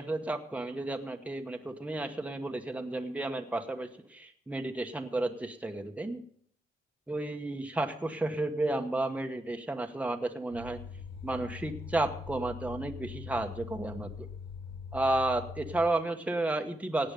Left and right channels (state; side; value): normal; both; correlation 0.85